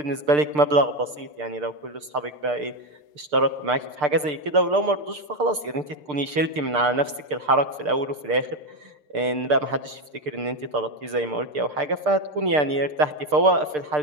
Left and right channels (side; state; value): left; late; 6.7 ms